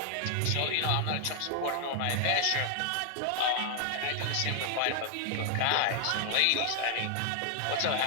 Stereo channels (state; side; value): different; both; correlation 0.00